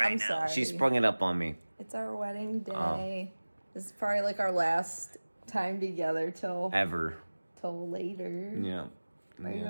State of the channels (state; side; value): inverted; both; correlation -1.00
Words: I'm now. sorry. She sprung it up on me. It's our wedding day. This is probably like our last time together till Ever. later. Yeah. Are you